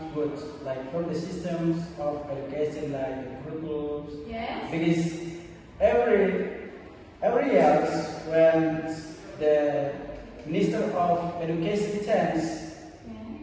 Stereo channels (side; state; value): both; identical; correlation 1.00